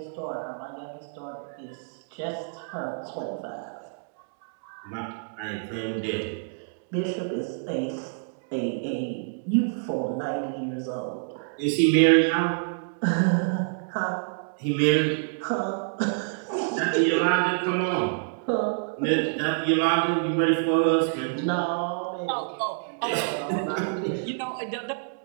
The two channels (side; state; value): left; silent; digital silence